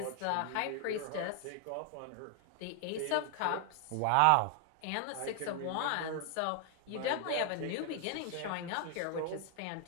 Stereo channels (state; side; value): different; both; correlation 0.00